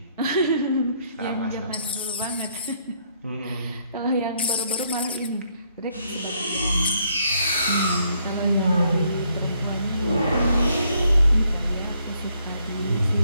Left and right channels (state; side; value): inverted; both; correlation -0.70